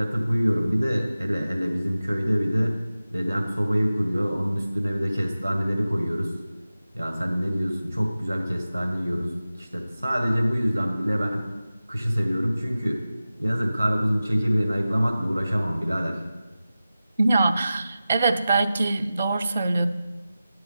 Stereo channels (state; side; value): inverted; both; correlation -0.95